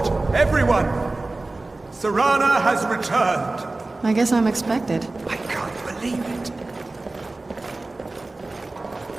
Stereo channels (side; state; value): left; quieter; 3.1 dB